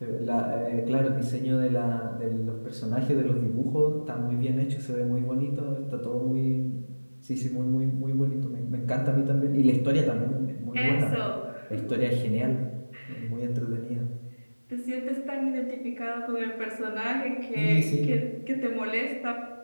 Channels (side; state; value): both; inverted; correlation -1.00